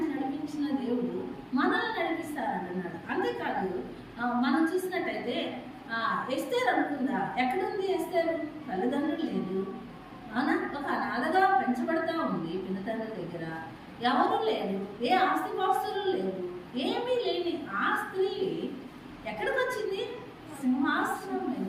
నడిపించిన దేవుడు మనల్ని నడిపిస్తారంటున్నాడు. అంతేకాదు మనం చూసినట్టయితే ఎస్తేరు అనుకుందా, ఎక్కడుంది ఎస్తేరు? తల్లిదండ్రులు లేదు, అవునా? ఒక అనాథగా పెంచబడతా ఉంది పినతండ్రి దగ్గర, ఎవరు లేరు, ఏ ఆస్తిపాస్తులు లేవు, ఏమీ లేని ఆ స్త్రీ ఎక్కడికి వచ్చింది? సింహాసనం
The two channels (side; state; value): both; identical; correlation 1.00